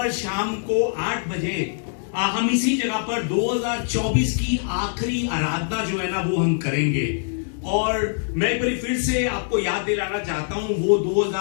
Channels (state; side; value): silent; right; digital silence